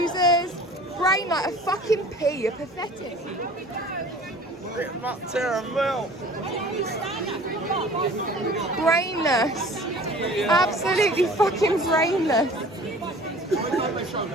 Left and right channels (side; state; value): both; normal; correlation 0.46